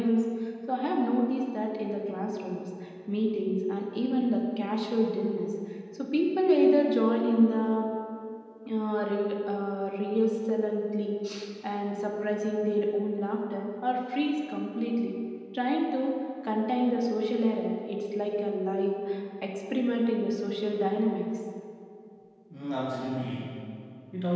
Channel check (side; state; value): both; identical; correlation 1.00